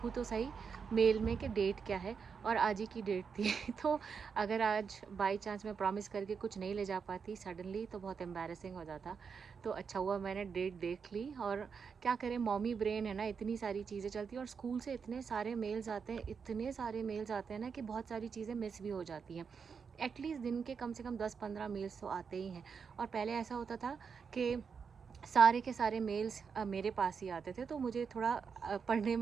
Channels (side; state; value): left; quieter; 6.0 dB